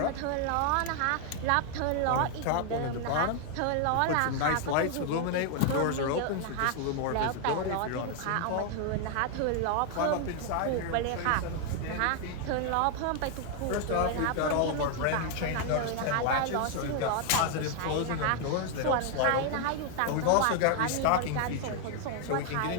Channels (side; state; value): both; different; correlation 0.00